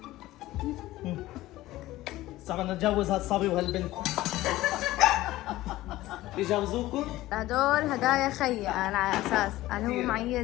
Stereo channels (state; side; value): quieter; right; 16.6 dB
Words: صعب نتجوز هالصبي وهالبنت. يجوزوكم؟ هدول هدايا خيي انا على اساس انا هو